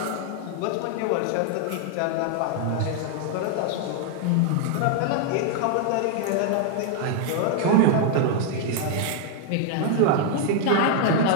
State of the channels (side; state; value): both; different; correlation 0.00